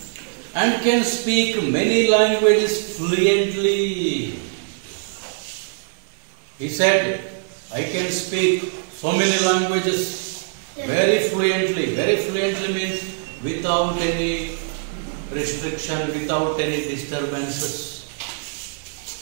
And can speak many languages fluently. He said, I can speak so many languages very fluently. Very fluently means without any restriction, without any disturbances.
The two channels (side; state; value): left; silent; 63 dB below the other